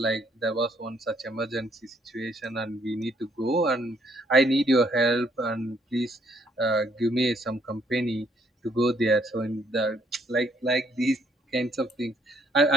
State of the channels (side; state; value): both; normal; correlation 0.68